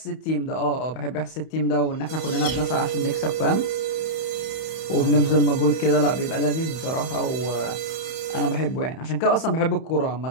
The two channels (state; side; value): late; right; 31 ms